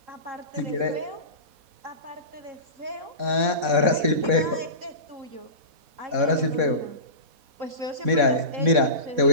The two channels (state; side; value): late; left; 4.1 ms